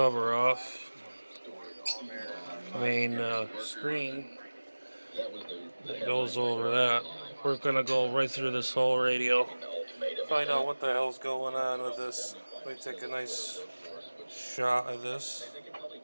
off. Main screen that goes over that. We're gonna go right through this whole radio, find out what the hell's going on with this. Let me take a nice shot of this.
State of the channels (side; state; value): both; inverted; correlation -1.00